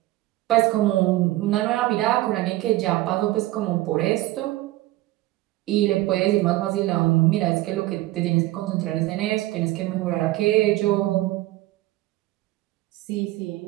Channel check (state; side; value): quieter; left; 17.6 dB